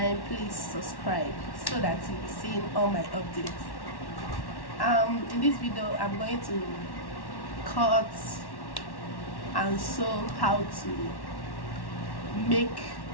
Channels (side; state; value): right; late; 1.1 ms